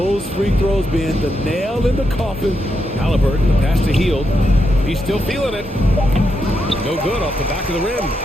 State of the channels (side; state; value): both; normal; correlation 0.83